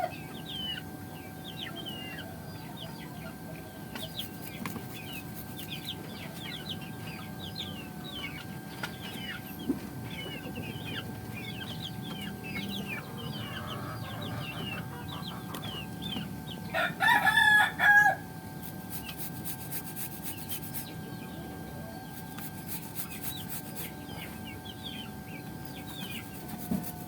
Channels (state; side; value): identical; both; correlation 1.00